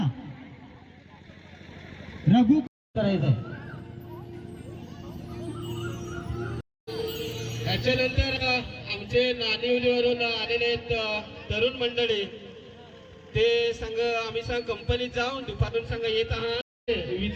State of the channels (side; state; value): both; identical; correlation 1.00